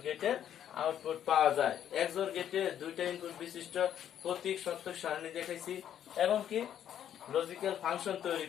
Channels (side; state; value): right; quieter; 10.1 dB